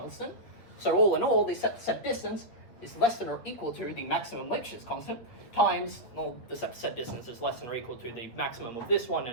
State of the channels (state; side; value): late; right; 8.3 ms